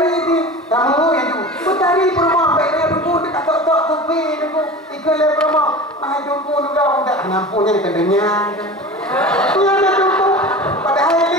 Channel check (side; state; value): both; normal; correlation 0.34